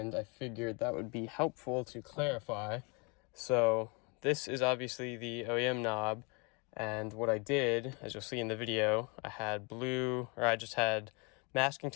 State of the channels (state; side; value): quieter; right; 31.4 dB